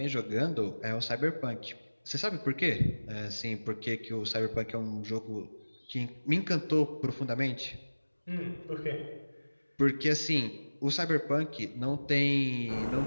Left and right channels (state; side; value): inverted; both; correlation -1.00